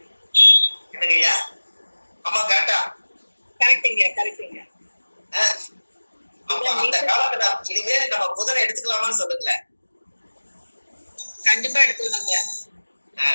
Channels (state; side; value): inverted; both; correlation -1.00